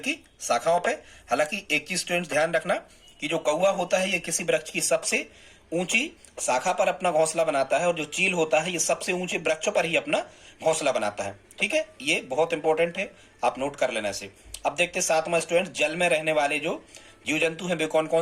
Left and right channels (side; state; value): both; identical; correlation 1.00